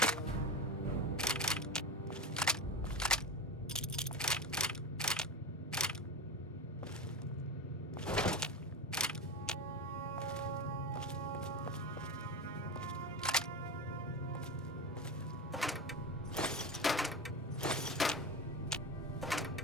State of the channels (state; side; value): normal; both; correlation 0.23